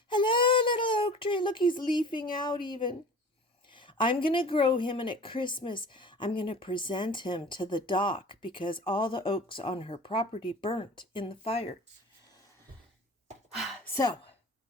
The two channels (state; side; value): normal; both; correlation 0.40